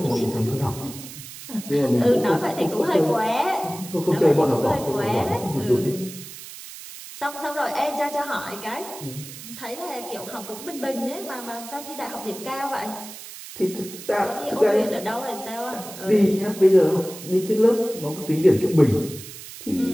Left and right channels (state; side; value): noise; right; hiss, 14 dB below the sound